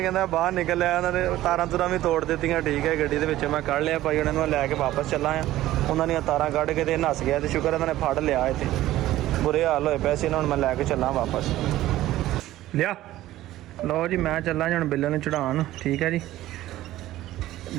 कहता बाहर निकल लिया उन्होंने तारां तुरां भी तोड़ दित्तियां ठीक है गड्डी दे विच मैं कढ़ लिया भाई उन्होंने लैके वापस चला आ उन्होंने तारां कढ़ के ते नस गया तो शुक्र उन्होंने फड़ लिया इत्थे बुरे हाल होए पैसे हुण मैं लैके चला वापस लिया लो जी मैं चला जी हुण बिल्ले नूं चढ़ाउण ठीक है जी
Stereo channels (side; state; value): left; quieter; 15.0 dB